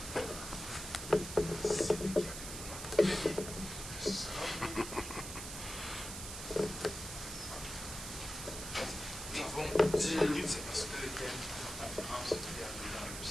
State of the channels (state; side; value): noise; right; hiss, 8 dB below the sound